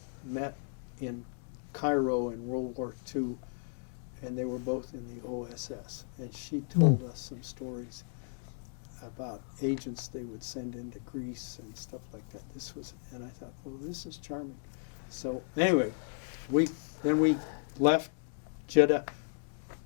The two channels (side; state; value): right; silent; digital silence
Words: met in Cairo in World War II, and they were both in the OSS. And she told us some stories about agents they would send into Greece and stuff like that. And I thought, well, this is charming. So anyway, we left Jeddah